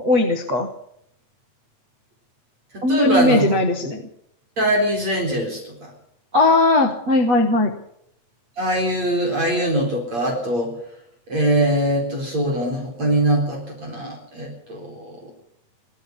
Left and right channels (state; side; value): late; left; 8.6 ms